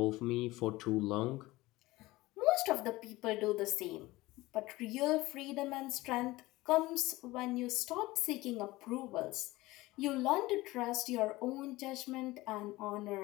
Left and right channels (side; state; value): right; quieter; 19.4 dB